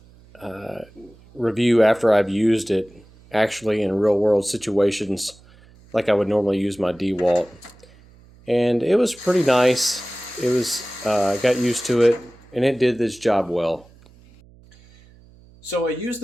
review after I've used it actually in real world situations like I would normally use my DeWalt. And it was pretty nice. It was, I got used to it and it did this job well. So I used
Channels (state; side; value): noise; right; hum, 26 dB below the sound